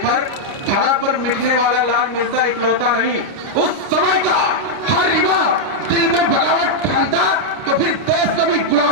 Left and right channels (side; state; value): left; late; 29 ms